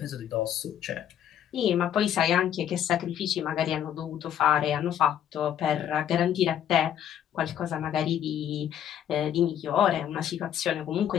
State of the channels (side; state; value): right; quieter; 10.1 dB